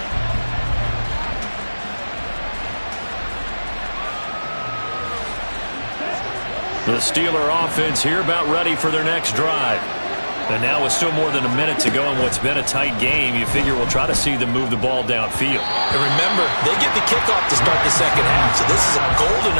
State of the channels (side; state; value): both; inverted; correlation -1.00